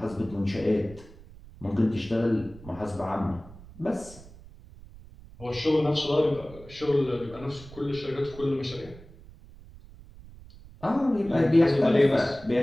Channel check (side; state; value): right; noise; rumble, 19 dB below the sound